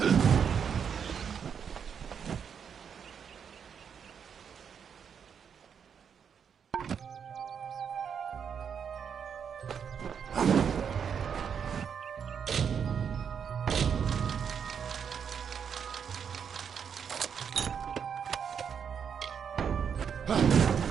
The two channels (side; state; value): left; quieter; 7.3 dB